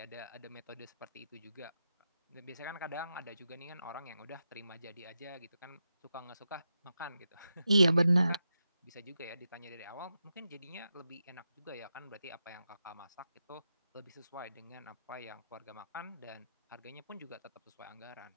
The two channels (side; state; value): both; inverted; correlation -0.87